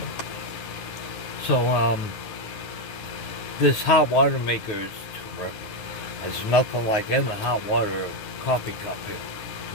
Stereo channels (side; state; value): right; late; 9.4 ms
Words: So this hot water maker is terrific. There's nothing like in the hot water coffee cup here,